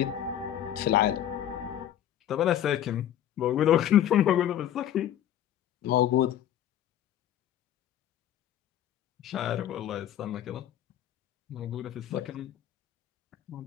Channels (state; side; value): quieter; right; 11.1 dB